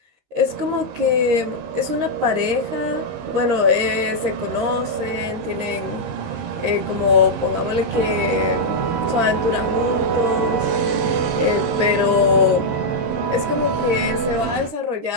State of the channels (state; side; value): late; left; 13 ms